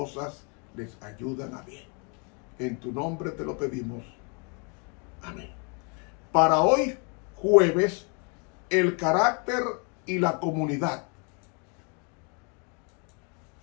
les ayudan a bien. En tu nombre te lo pedimos. Amén. Para hoy, jueves, el carácter y la comunidad.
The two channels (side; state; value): right; quieter; 35.2 dB